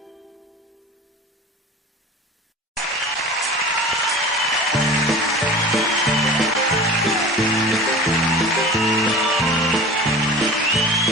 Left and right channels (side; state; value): both; normal; correlation 0.36